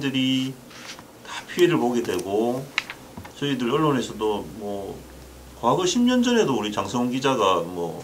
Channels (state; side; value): identical; both; correlation 1.00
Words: 다 피해를 보게 되고 저희들 언론에서도 뭐 과거 10년 전에도 우리 장성훈 기자가